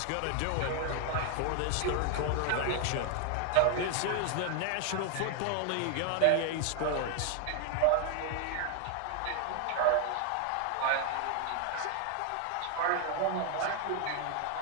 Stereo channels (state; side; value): different; both; correlation 0.00